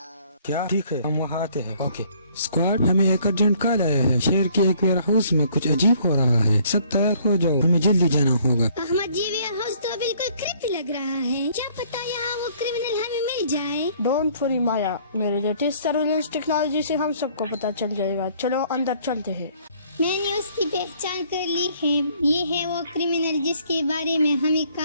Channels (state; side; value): inverted; both; correlation -0.60